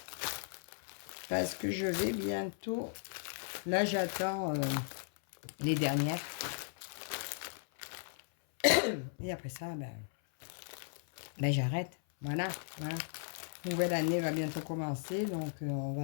Parce que je vais bientôt... Là, j'attends les dernières. Et après ça, ben j'arrête. Voilà, voilà. Nouvelle année va bientôt commencer, donc on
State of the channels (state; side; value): silent; right; 53 dB below the other